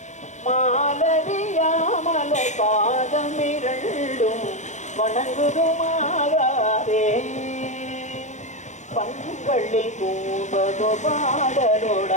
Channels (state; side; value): late; right; 0.34 ms